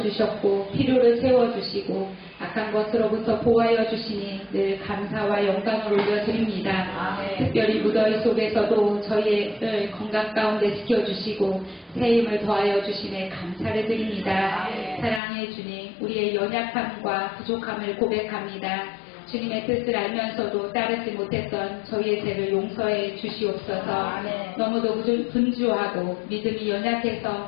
필요를 채워주시고 악한 것으로부터 보호하여 주시니 늘 감사와 영광을 올려드립니다. 특별히 무더위 속에서도 저희의 건강 가운데 지켜주시고 새 힘을 더하여 주시네 감사를 드립니다. 사랑의 주님, 우리의 연약함과 부족함을 고백합니다. 주님의 뜻을 알면서도 따르지 못했던 저희의 죄를 용서해 주시옵소서. 너무도 분주하고 믿음이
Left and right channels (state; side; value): drops out; right; at 15.2 s